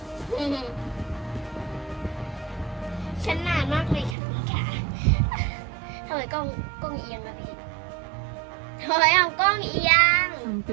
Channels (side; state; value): left; drops out; at 4.2 s